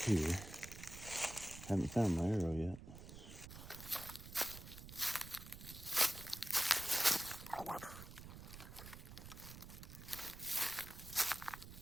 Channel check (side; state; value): right; noise; rumble, 13 dB below the sound